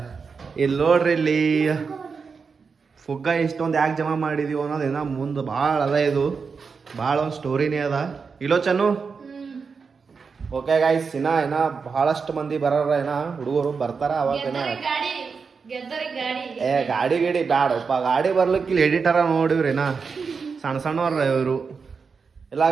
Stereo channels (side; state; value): left; quieter; 5.3 dB